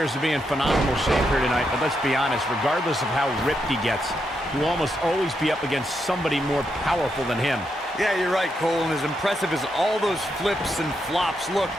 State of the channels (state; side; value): normal; both; correlation 0.82